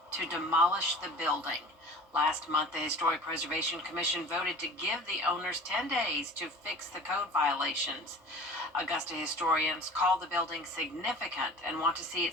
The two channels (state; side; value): normal; both; correlation 0.42